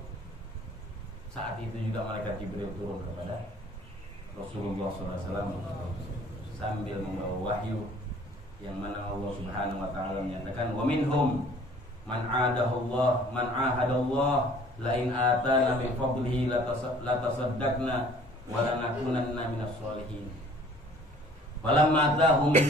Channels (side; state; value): both; normal; correlation 0.53